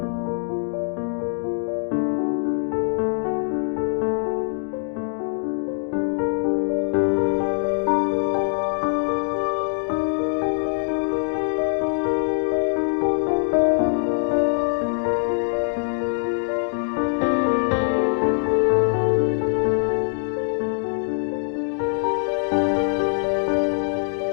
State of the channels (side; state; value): right; silent; digital silence